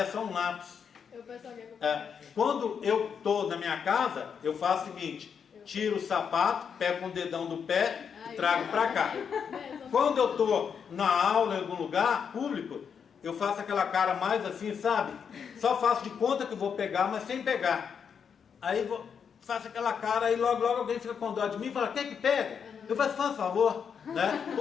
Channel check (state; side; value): quieter; right; 6.9 dB